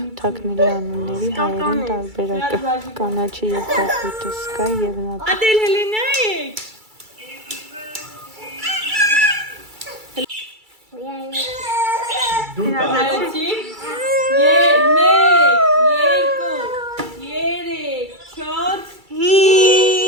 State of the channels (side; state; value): left; late; 2.3 ms